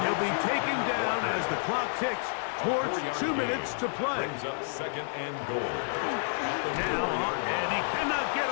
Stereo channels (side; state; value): right; silent; digital silence